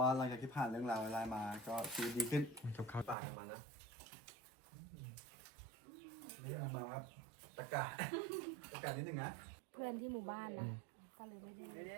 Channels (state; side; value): drops out; left; at 3.2 s